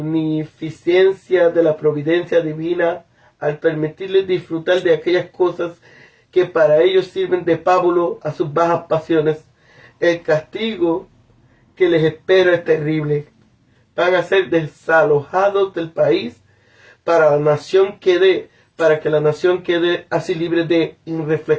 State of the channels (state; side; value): identical; both; correlation 1.00